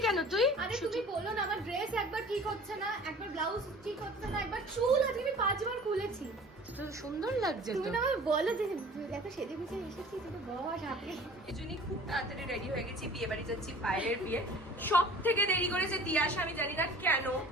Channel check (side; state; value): both; normal; correlation 0.45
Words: কেন তুই? আরে তুমি বলো না, আমার ড্রেস একবার ঠিক হচ্ছে না, একবার ব্লাউজ ঠিক হচ্ছে না, একবার চুল আজকে আমি 5 বার খুলেছি। তো সুন্দর লাগছে তো। তুমি না আমায় বলো যে এত সেজে গুজে এসেছি, তুমি বস হাতে। এজন্যই খুব তাড়াতাড়ি রেডি হয়ে গেছি, বিয়ে বাড়ি যাচ্ছি, পায়েলের বিয়ে। সব থেকে দেরি করেছে তিয়াশা, আমি জানি না কেন,